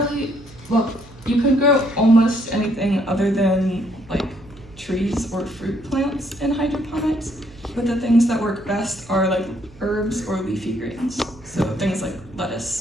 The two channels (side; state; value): right; noise; hum, 22 dB below the sound